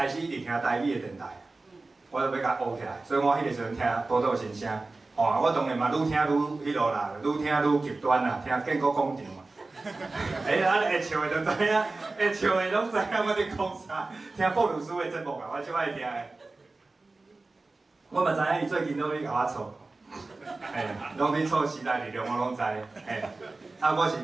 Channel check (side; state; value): left; quieter; 3.4 dB